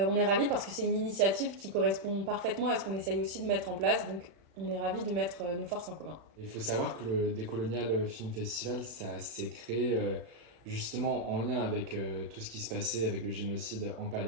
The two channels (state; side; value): late; left; 36 ms